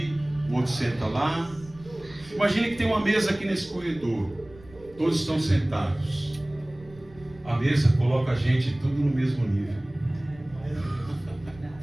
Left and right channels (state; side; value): noise; right; rumble, 22 dB below the sound